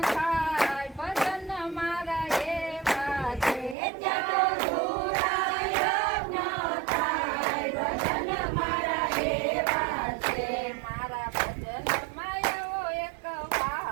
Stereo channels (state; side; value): drops out; left; at 3.8 s